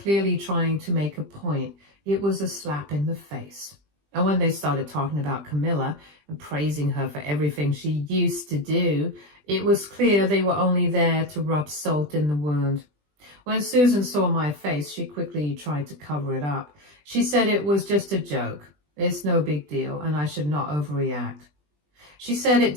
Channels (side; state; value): left; late; 20 ms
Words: trying to make a point. It was a slap in the face. And when they started talking about Camilla and praising her for everything she used to do, it was clear they were only there to rub salt in the wound. When Susan saw my face, she quickly tried to cover it up. She said it was just a joke. It's no big deal, and I should not overreact. She said it